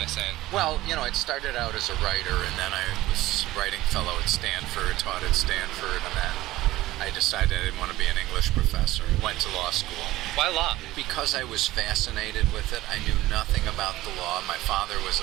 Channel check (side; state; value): left; quieter; 16.8 dB